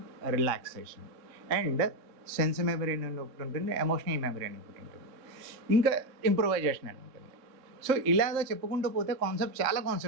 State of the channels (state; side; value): late; left; 3.6 ms